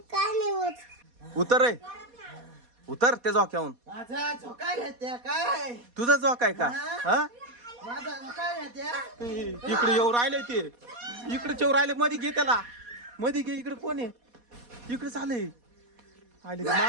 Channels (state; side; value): late; left; 4.2 ms